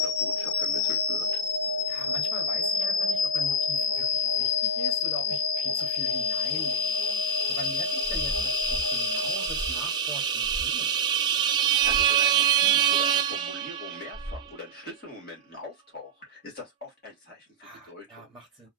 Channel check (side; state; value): both; normal; correlation -0.05